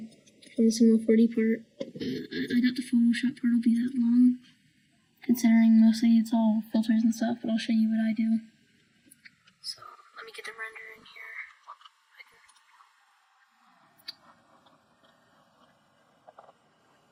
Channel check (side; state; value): both; identical; correlation 1.00